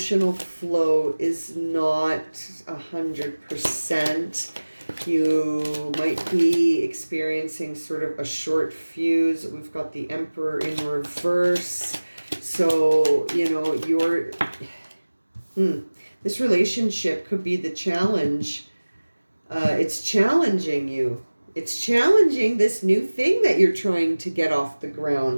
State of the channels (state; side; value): inverted; both; correlation -1.00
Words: flow is not 100%. You might be experiencing sort of a short fuse. We've got the Emperor in reverse. So, you know, this relationship could be the challenge. It's challenging you. It's challenging this new thing that you're trying to get off the